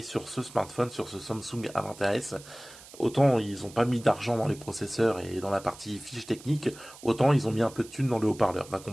sur ce smartphone, sur ce Samsung A20s. Autant ils ont pas mis d'argent dans les processeurs et dans la partie fiche technique, autant ils ont mis un peu de thunes dans le haut-parleur. Va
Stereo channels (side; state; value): right; noise; hiss, 19 dB below the sound